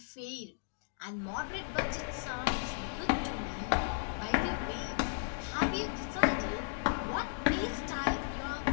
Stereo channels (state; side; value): silent; right; digital silence